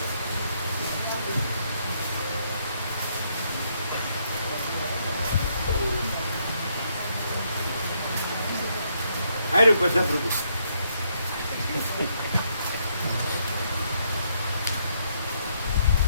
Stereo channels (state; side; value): inverted; both; correlation -0.74